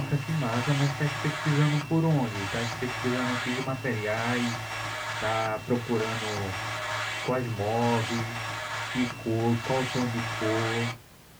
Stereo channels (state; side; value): identical; both; correlation 1.00